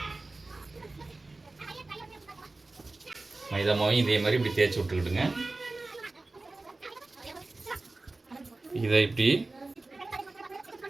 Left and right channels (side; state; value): left; quieter; 3.2 dB